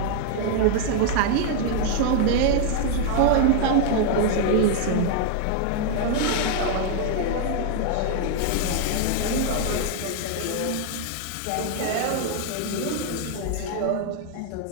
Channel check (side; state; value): both; different; correlation 0.00